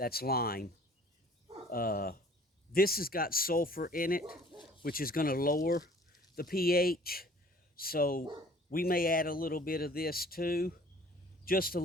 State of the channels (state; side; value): normal; both; correlation 0.52